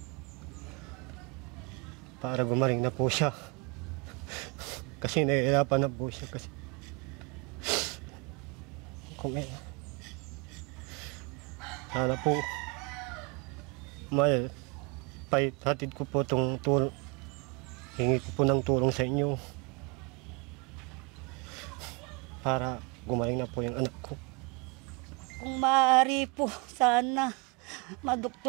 Para gumaling na po siya. Kasi nahihirapan na po siya kasi sana po hatid ko po itong tulong, hingi ko po ng tulong sa inyo para gumaling na po yung anak ko. Kung maaari po, sana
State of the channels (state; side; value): quieter; left; 30.6 dB